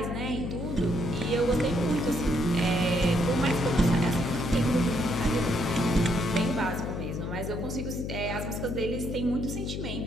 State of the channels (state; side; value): noise; left; hum, 4 dB below the sound